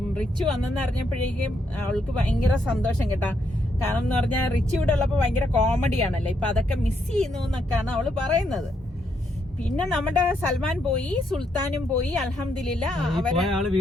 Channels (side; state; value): both; normal; correlation 0.77